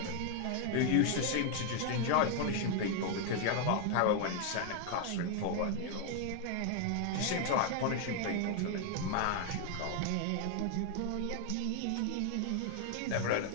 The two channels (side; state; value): both; different; correlation 0.00